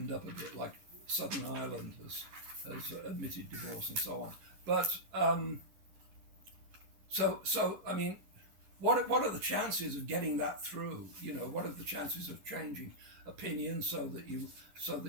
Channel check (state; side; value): late; left; 11 ms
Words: up a bit, like Southern Ireland has admitted divorce and so on. But so I mean, what are the chances of getting that through? What are the chances of changing opinion so that you